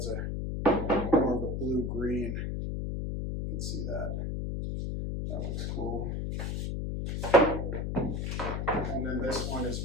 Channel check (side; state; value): left; noise; hum, 2 dB below the sound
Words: more of a blue-green. You can see that. That looks cool. And then this one is